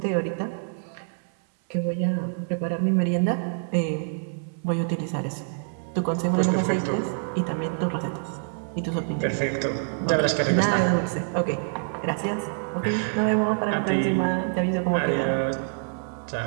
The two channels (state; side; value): silent; left; 60 dB below the other